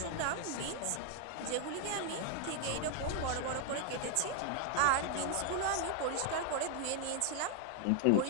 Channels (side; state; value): both; different; correlation 0.00